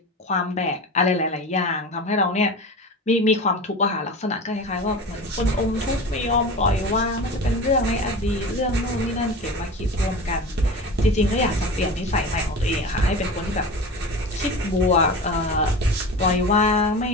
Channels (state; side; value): normal; both; correlation 0.31